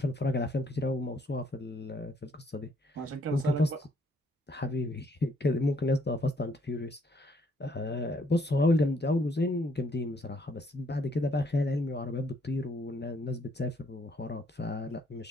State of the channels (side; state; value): both; normal; correlation 0.68